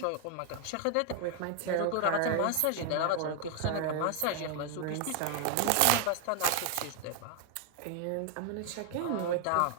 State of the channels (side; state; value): both; different; correlation 0.00